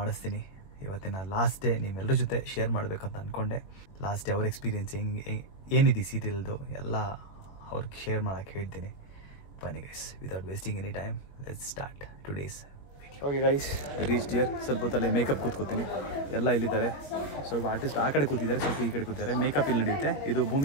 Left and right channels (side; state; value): right; late; 21 ms